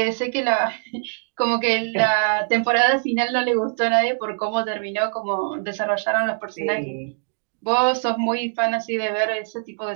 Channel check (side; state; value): left; silent; digital silence